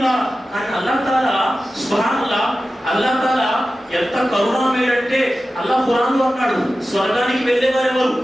కానీ అల్లాహ్ తాలా సుబ్హానల్లాహ్, అల్లాహ్ తాలా ఎంత కరుణామయుడంటే అల్లాహ్ ఖురాన్లో అన్నాడు, స్వర్గానికి వెళ్ళేవారు ఎవరు?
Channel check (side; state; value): both; normal; correlation 0.94